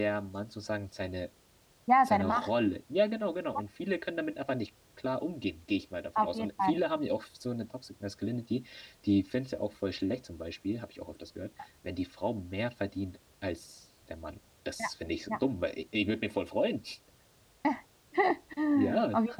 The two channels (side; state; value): both; identical; correlation 1.00